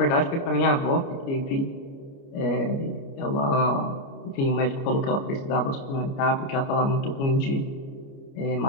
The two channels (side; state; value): right; late; 29 ms